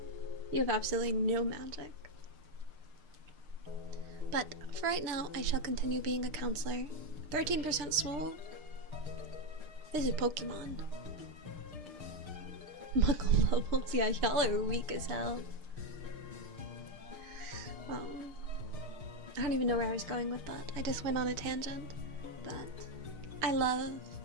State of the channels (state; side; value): late; left; 6.6 ms